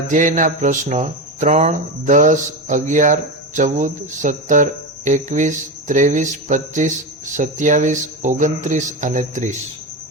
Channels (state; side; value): normal; both; correlation 0.18